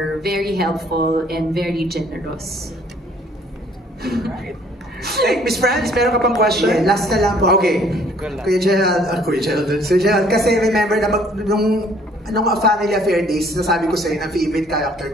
very helpful and very generous. Hey, Miss Franz, meron ka pang question? Yeah, last na lang po. Okay. Kuya Gerald, kasi remember na nung Family Affair Days, nasabi ko sa'yo na favorite character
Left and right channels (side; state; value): both; normal; correlation 0.59